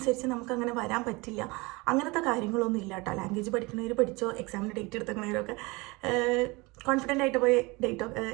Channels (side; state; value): left; quieter; 24.9 dB